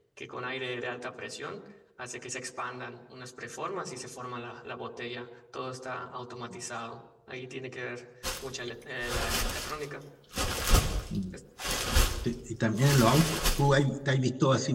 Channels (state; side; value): identical; both; correlation 1.00